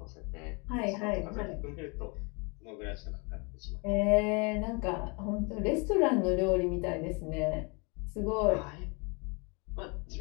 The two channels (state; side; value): quieter; right; 31.4 dB